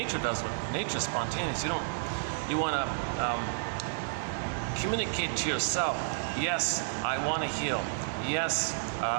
does what nature's spontaneous. You want to communicate to yourself. Yes, I want to heal. Yes,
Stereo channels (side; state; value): left; silent; digital silence